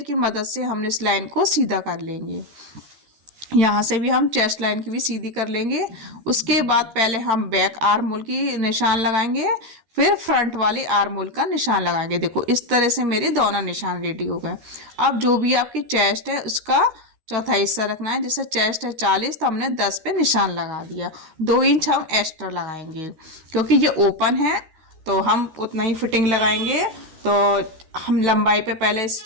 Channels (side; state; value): left; late; 13 ms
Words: मदद से हमने इस लाइन को सीधा कर लेंगे। यहाँ से भी हम चेस्ट लाइन की भी सीधी कर लेंगे। उसके बाद पहले हम बैक आर्म होल की निशान लगाएंगे, फिर फ्रंट वाली आर्म होल का निशान लगाएंगे। देखो इस तरह से मेरे दोनों निशान रेडी हो गए। अब जो भी आपकी चेस्ट है उसका चौथा हिस्सा रखना है। जैसे चेस्ट है 40 तो हमने 10 पे निशान लगा दिया। 2 इंच हम एक्स्ट्रा लगाएंगे क्योंकि ये ओपन है तो हम उतना ही फिटिंग लगाएंगे। तो हम लंबाई पे पहले